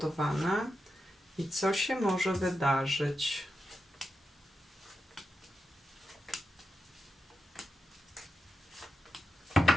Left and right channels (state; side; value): normal; both; correlation 0.88